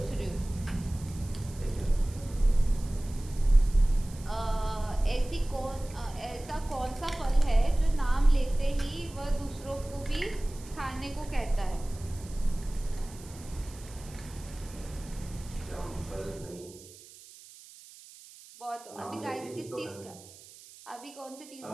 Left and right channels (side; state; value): right; noise; hiss, 19 dB below the sound